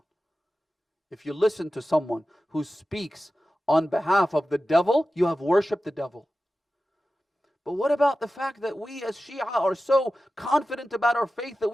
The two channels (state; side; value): normal; both; correlation 0.94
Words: If you listen to someone who speaks on behalf of the devil, you have worshipped the devil. But what about the fact that we as Shia are so confident about our faith that